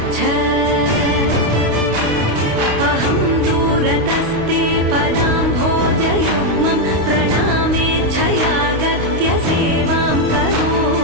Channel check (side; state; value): left; late; 28 ms